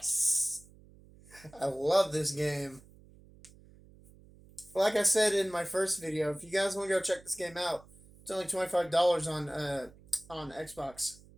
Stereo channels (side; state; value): right; noise; hum, 24 dB below the sound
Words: I love this game. Like I said in my first video, if you guys want to go check this game out, it's only $25 on Xbox.